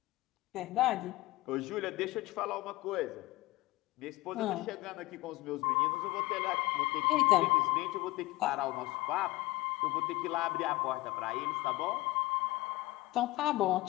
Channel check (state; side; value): quieter; right; 19.4 dB